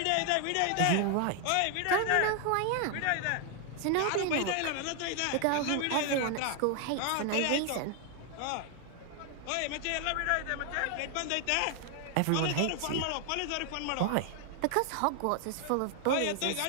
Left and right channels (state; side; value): different; both; correlation 0.00